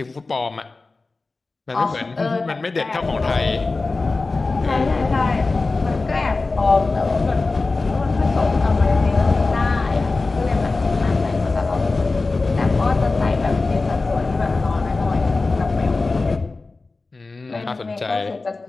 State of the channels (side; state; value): right; quieter; 3.6 dB